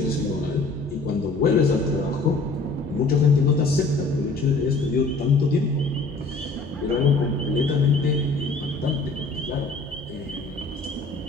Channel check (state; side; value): quieter; right; 3.4 dB